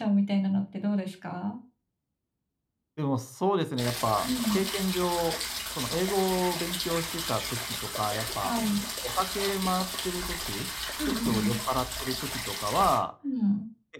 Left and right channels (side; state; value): both; identical; correlation 1.00